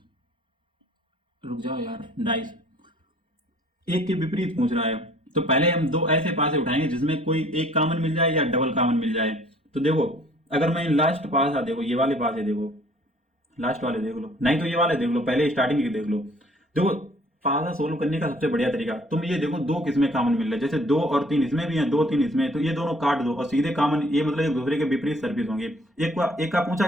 रुक जाओ यार, डाइस एक के विपरीत पूछ रहा है, तो पहले हम दो ऐसे पासे उठाएंगे जिसमें कोई एक कॉमन मिल जाए या डबल कॉमन मिल जाए। तो देखो अगर मैं लास्ट पासा, देखो ये वाले पासे देखो, लास्ट वाले देख लो, नहीं तो ये वाले देख लो, पहले स्टार्टिंग के देख लो। देखो पासा सोल्व करने का सबसे बढ़िया तरीका, तुम ये देखो दो किसमें कॉमन मिल रहा है, जैसे 2 और 3 इसमें भी है, 2 3 इसमें है, तो ये दोनों काट दो और सीधे कॉमन, ये मतलब एक दूसरे के विपरीत सर्फेस होंगे। एक का पूछा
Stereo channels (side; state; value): both; normal; correlation 0.56